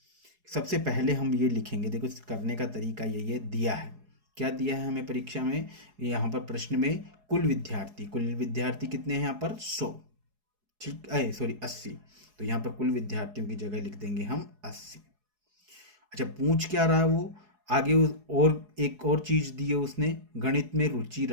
सबसे पहले हम ये लिखेंगे, देखो करने का तरीका यही है, दिया है, क्या दिया है हमें परीक्षा में, यहाँ पर प्रश्न में कुल विद्यार्थी कितने हैं यहाँ पर 100, ठीक है, सॉरी 80, तो यहाँ पर कुल विद्यार्थियों की जगह लिख देंगे हम 80। अच्छा पूछ क्या रहा है वो आगे, और एक और चीज दी है उसने, गणित में रुचि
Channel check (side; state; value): left; late; 4.8 ms